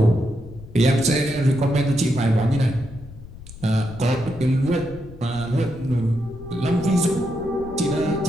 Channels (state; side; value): noise; left; rumble, 16 dB below the sound